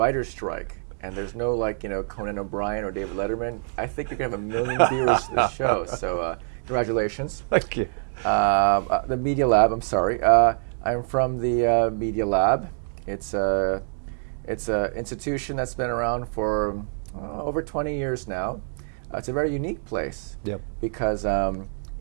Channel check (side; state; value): left; silent; digital silence